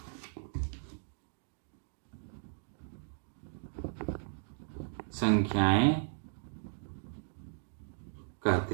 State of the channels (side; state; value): left; silent; digital silence